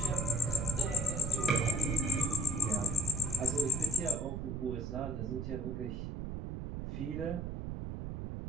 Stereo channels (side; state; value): right; noise; rumble, 5 dB below the sound